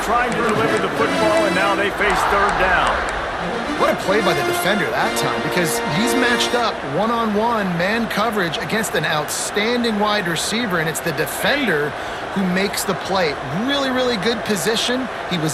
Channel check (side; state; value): both; identical; correlation 1.00